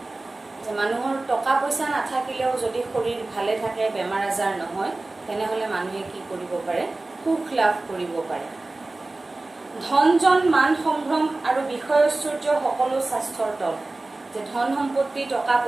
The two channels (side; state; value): left; quieter; 3.1 dB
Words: যে মানুহৰ টকা পইচা নাথাকিলেও যদি শৰীৰ ভালে থাকে, বেমাৰ আজাৰ নহয়, তেনেহ'লে মানুহে কি কৰিব পাৰে, সুখ লাভ কৰিব পাৰে। ধন-জন, মান সম্ভ্ৰম আৰু বিষয় ঐশ্বৰ্য সকলো স্বাস্থ্যৰ তল। যে ধন সম্পত্তি, টকা